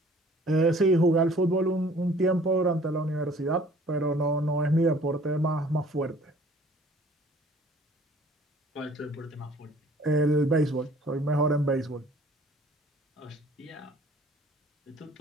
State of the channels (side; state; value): both; normal; correlation 0.54